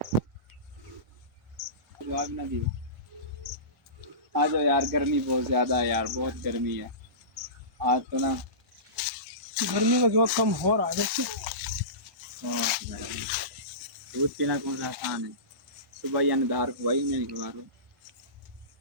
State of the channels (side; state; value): left; late; 1.3 ms